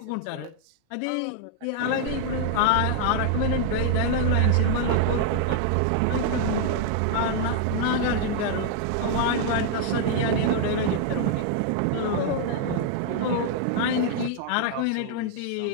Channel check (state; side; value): different; both; correlation 0.00